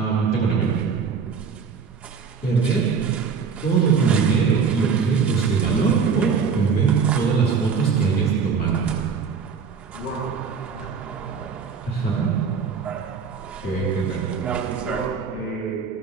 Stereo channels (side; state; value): left; quieter; 5.9 dB